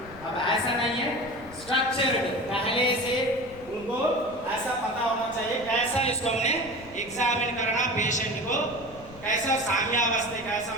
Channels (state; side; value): noise; left; rumble, 19 dB below the sound